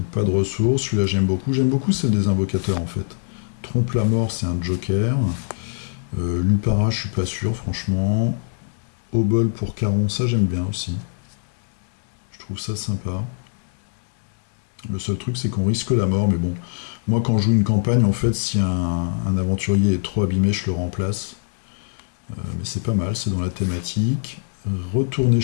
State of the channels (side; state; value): right; silent; digital silence